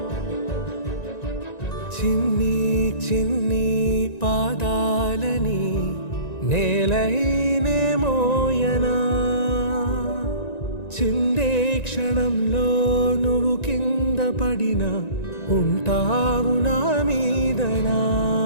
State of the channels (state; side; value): late; right; 1.9 ms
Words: చిన్ని చిన్ని పాదాలని నేలైనే మోయనా చిందే క్షణంలో నువ్వు కింద పడినా ఉంటావు నా మీదనా